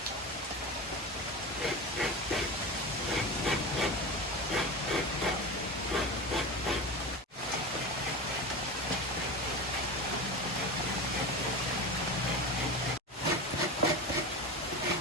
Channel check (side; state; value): both; normal; correlation 0.25